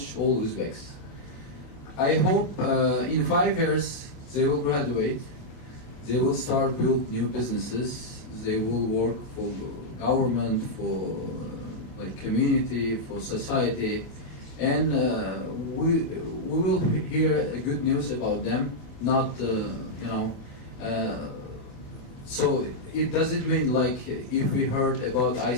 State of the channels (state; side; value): late; right; 27 ms